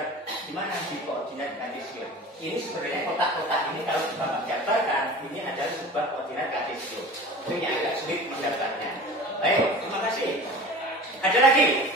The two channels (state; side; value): normal; both; correlation 0.38